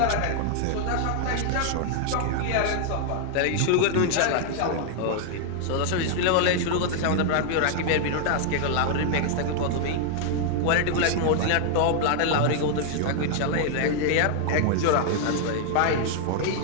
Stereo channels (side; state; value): both; different; correlation 0.00